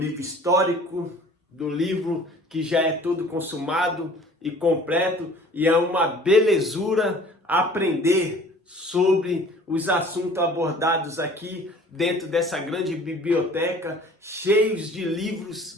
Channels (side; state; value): both; normal; correlation 0.49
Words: histórico, do livro que já é todo consumado e completo, e é uma belezura aprender sobre os assuntos abordados aqui dentro dessa grande biblioteca, cheios de